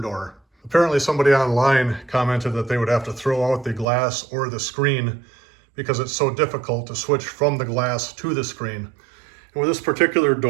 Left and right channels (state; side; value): drops out; left; at 3.9 s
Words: door. Apparently somebody online commented that they would have to throw out the glass or the screen because it's so difficult to switch from the glass to the screen. And with this particular